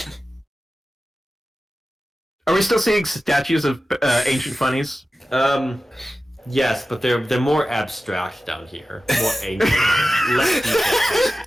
Are we still seeing statues of ancient Phunnies? Yes, but they're more abstract down here, more ancient, less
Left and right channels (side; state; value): both; normal; correlation 0.94